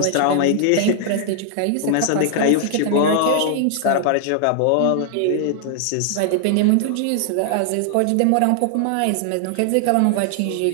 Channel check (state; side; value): different; both; correlation 0.00